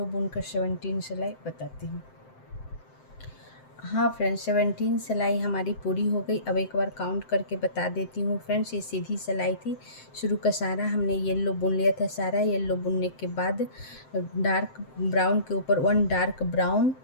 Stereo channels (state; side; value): late; right; 7.7 ms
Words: बुनकर 17 सिलाई बताती हूँ। हाँ फ्रेंड्स, 17 सिलाई हमारी पूरी हो गई। अब एक बार काउंट करके बता देती हूँ फ्रेंड्स। ये सीधी सिलाई थी, शुरू का सारा हमने येलो बुन लिया था। सारा येलो बुनने के बाद डार्क ब्राउन के ऊपर 1 डार्क ब्राउन